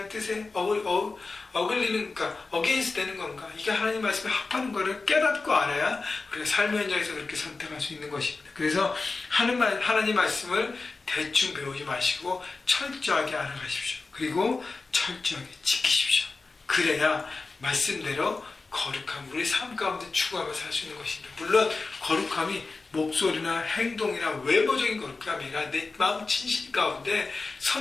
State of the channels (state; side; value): quieter; right; 3.9 dB